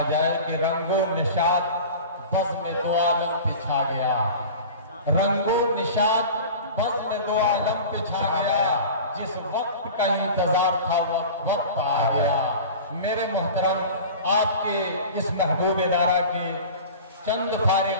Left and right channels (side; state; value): both; inverted; correlation -0.37